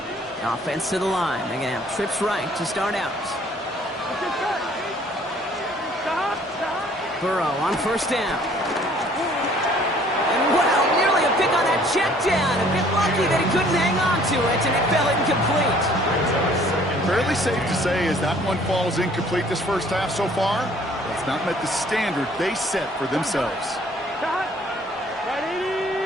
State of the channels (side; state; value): both; normal; correlation 0.57